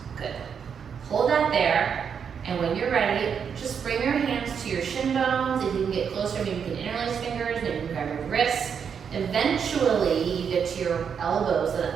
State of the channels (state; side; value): quieter; left; 7.1 dB